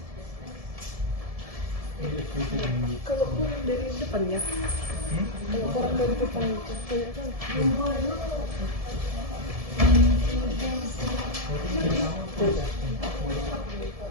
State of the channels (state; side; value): late; left; 1.7 ms